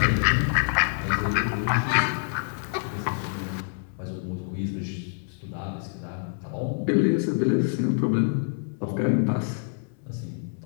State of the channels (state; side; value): silent; right; 61 dB below the other